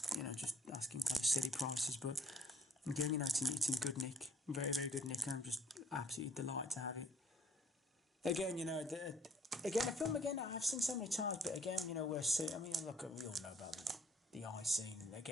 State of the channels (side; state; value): both; normal; correlation 0.61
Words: just asking kind of silly prices. But again, it's in good nick, very very good nick, and I'm just absolutely delighted to have it. Again, a film I've seen so many times, but again, we're seeing. I mean, look, we all know about the eye scene, and